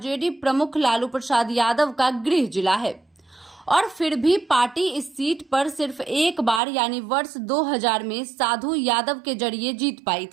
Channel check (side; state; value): left; drops out; at 6.6 s